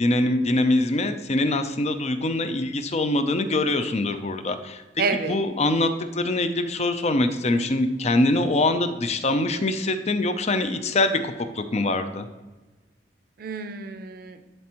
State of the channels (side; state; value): both; normal; correlation 0.50